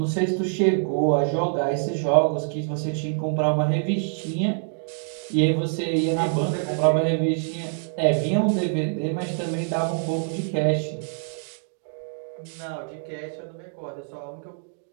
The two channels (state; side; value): silent; left; digital silence